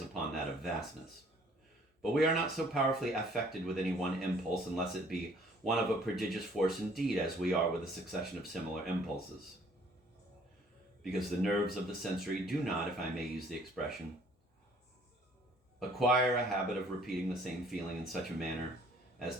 upon that of vastness. But we are not so powerfully affected with any one impulse, unless it be one of a prodigious force indeed, as we are with a succession of similar impulses. Because the nerves of the sensory do not, if I may use the expression, acquire a habit of repeating the same feeling in such a manner as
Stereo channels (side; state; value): both; normal; correlation 0.58